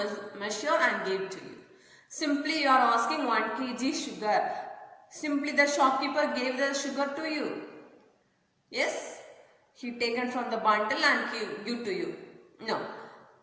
measure and give to you? Simply you are asking 1 kg sugar. Simply the shopkeeper gave the sugar to you. Yes? He taken from the bundle and give to you. No,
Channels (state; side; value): identical; both; correlation 1.00